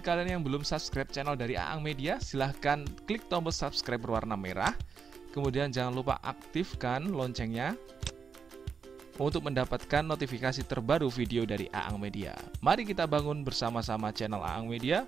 yang belum subscribe channel dari Aang Media, silahkan klik tombol subscribe berwarna merah. Kemudian jangan lupa aktifkan loncengnya untuk mendapatkan notifikasi terbaru video dari Aang Media. Mari kita bangun bersama-sama channel Aang Media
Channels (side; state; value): left; quieter; 6.0 dB